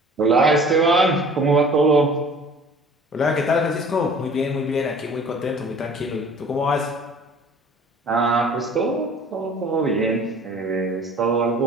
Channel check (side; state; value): both; normal; correlation 0.48